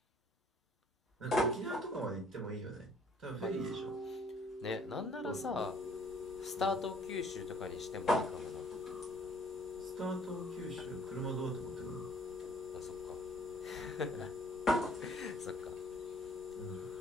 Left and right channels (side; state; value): both; normal; correlation 0.58